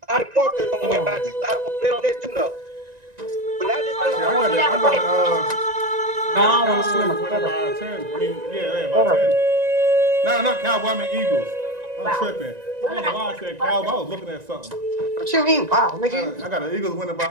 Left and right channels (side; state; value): left; late; 1.9 ms